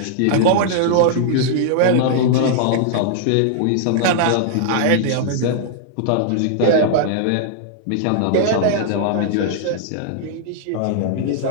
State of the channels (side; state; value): both; different; correlation -0.01